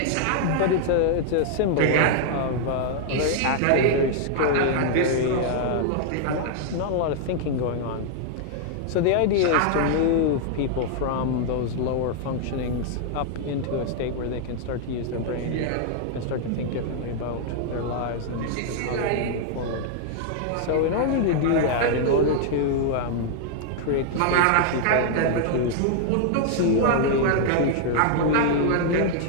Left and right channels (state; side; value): different; both; correlation -0.01